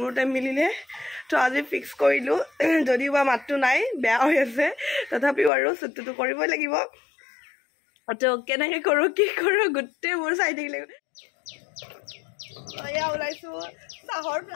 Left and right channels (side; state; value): right; drops out; at 5.5 s